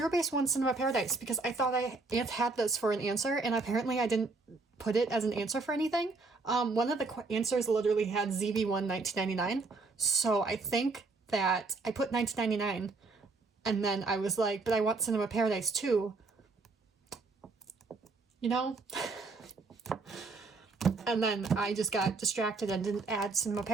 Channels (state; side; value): quieter; left; 3.7 dB